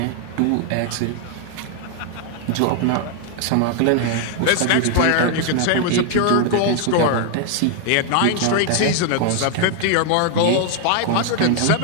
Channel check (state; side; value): different; both; correlation 0.00